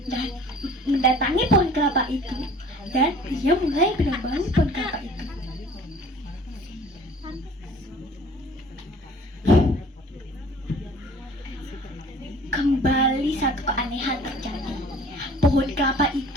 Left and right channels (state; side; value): normal; both; correlation 0.49